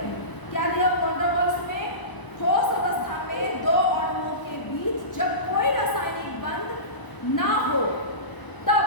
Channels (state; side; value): late; right; 1.0 ms